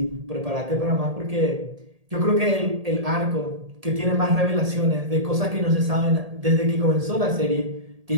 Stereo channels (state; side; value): late; left; 1.8 ms